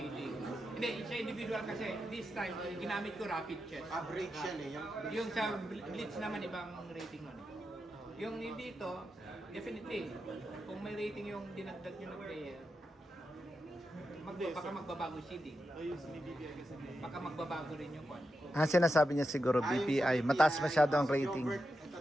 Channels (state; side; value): normal; both; correlation 0.88